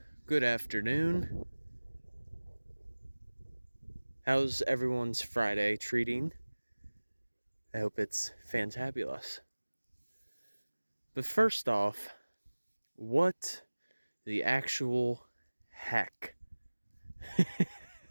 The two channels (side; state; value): both; inverted; correlation -1.00